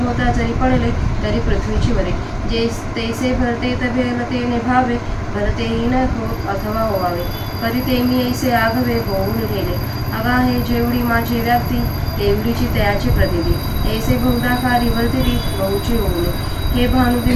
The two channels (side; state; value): both; identical; correlation 1.00